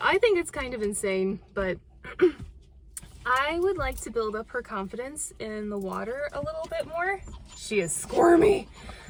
I think it's kind of insane, but I would like to build up her confidence in the water a little bit more. She is squirmy,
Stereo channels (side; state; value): both; identical; correlation 1.00